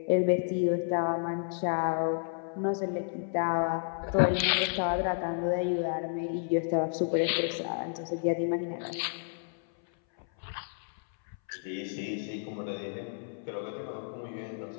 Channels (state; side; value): silent; right; 57 dB below the other